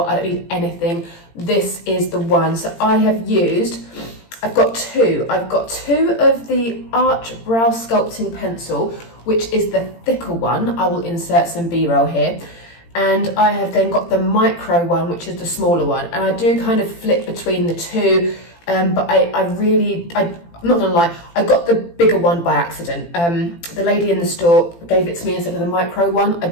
I don't need anything. This is the one. So I have used, I've got 2. I've got 2 of the Arch Brow Sculpting Pencil, which is the thicker one. I will insert some B-roll here. And I have then got the micro one, which is the smaller one. And I do kind of flip between the 2, but I'm not gonna lie, I got the bigger one by accident. The lady in the store gave it to me instead of the micro one. I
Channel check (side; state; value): right; late; 18 ms